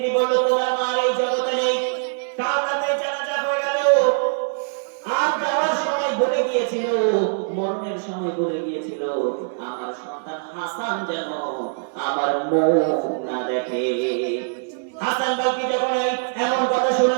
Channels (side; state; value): left; silent; 64 dB below the other